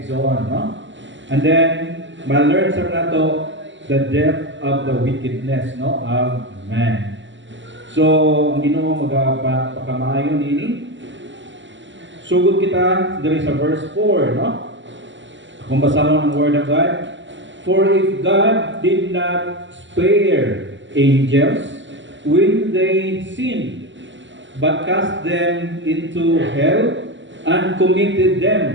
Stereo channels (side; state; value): left; late; 0.54 ms